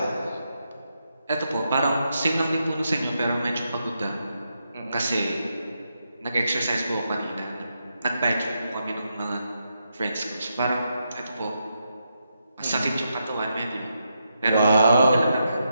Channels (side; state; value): both; inverted; correlation -0.83